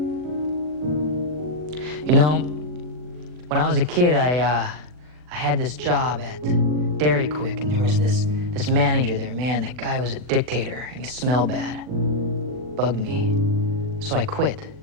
You know, when I was a kid, I had this job at Dairy Quick, and there was this manager there. Man, that guy was a dictator, and he smelled bad. Bugged me. So I quit.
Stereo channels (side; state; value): left; late; 40 ms